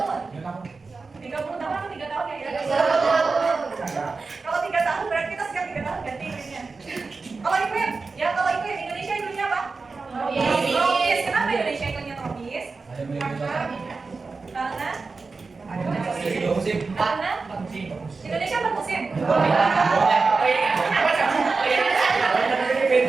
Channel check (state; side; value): quieter; left; 4.2 dB